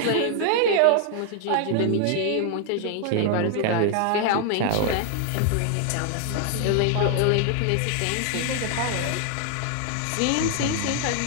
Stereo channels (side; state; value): both; different; correlation 0.00